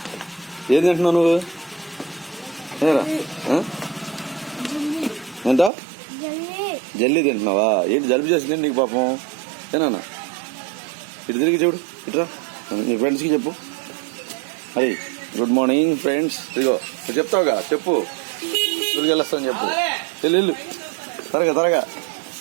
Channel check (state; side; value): drops out; left; at 5.7 s